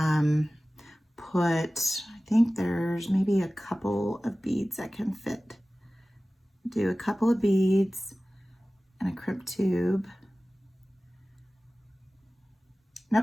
put, I think there's maybe a couple of beads that can fit. Do a couple of beads and a crimp tube.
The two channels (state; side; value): normal; both; correlation 0.97